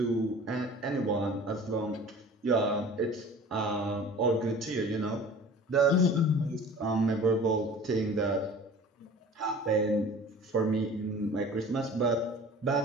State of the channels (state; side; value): normal; both; correlation 0.43